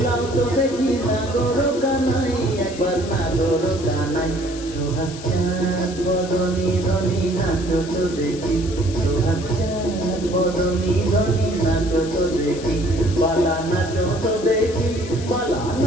তো দেখি নাগর কানাই, একবার নাগর কানাই। সোহাগ বদনী ধনী নাচো তো দেখি, সোহাগ বদনী ধনী নাচো তো দেখি, পালা নাচো তো দেখি, পালা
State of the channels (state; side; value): noise; left; hiss, 15 dB below the sound